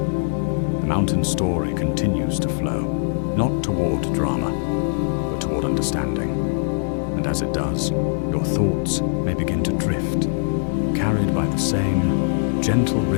mountain story continues to flow, not toward drama, but toward understanding. And as it does, your thoughts may begin to drift, carried by the same gentle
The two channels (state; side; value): silent; right; 56 dB below the other